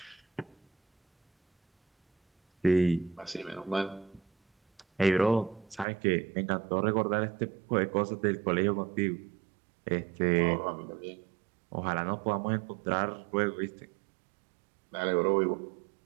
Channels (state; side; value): drops out; left; at 5.9 s